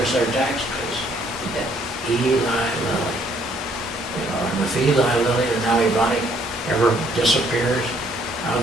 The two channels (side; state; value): both; normal; correlation 0.65